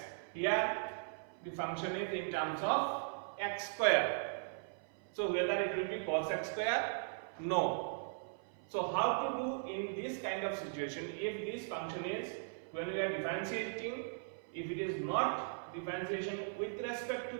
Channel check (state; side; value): silent; left; 52 dB below the other